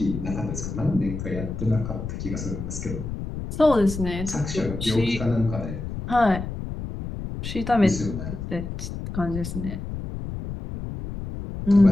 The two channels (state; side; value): noise; left; rumble, 7 dB below the sound